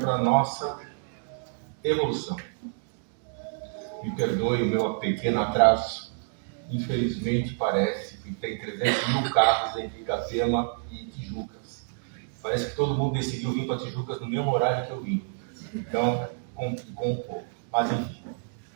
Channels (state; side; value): silent; left; digital silence